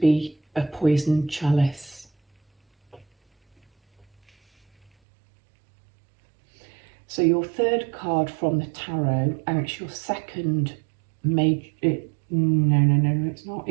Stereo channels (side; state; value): left; drops out; at 4.9 s